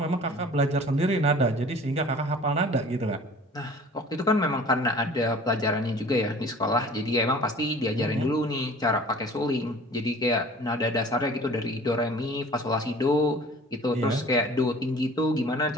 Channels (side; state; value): both; normal; correlation 0.46